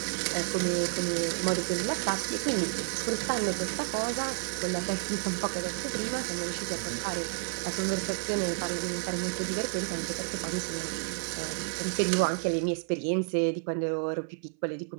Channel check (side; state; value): left; silent; 57 dB below the other